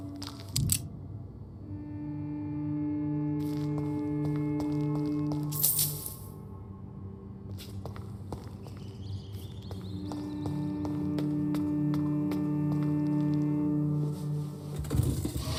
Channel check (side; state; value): both; identical; correlation 1.00